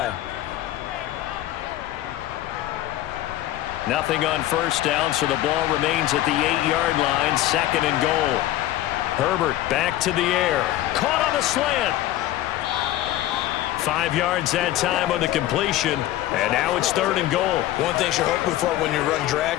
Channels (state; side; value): quieter; right; 14.4 dB